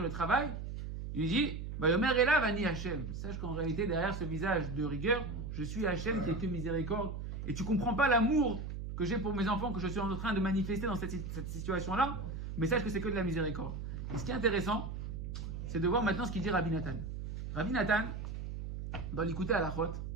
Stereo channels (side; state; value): right; noise; hum, 6 dB below the sound